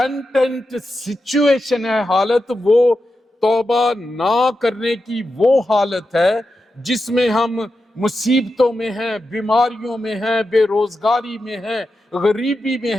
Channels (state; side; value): normal; both; correlation 0.89